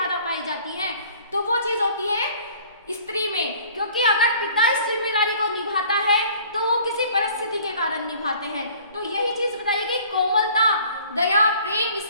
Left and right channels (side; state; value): both; inverted; correlation -0.52